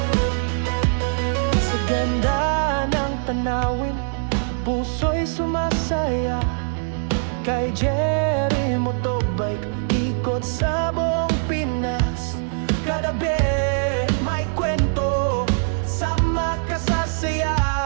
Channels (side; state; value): left; silent; 64 dB below the other